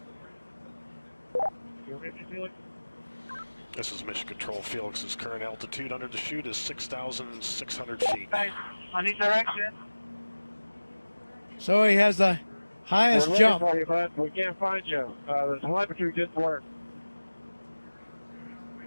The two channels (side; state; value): both; inverted; correlation -1.00